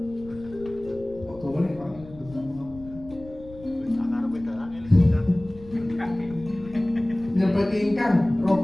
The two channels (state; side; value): noise; left; rumble, 19 dB below the sound